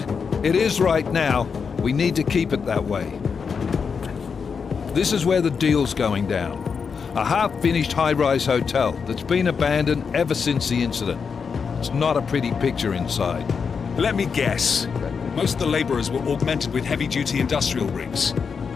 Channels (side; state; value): right; quieter; 5.9 dB